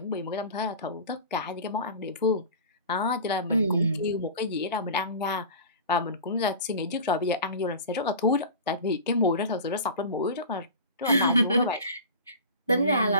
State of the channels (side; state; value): both; inverted; correlation -0.34